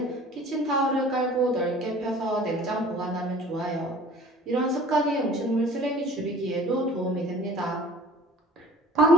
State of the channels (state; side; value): normal; both; correlation 0.47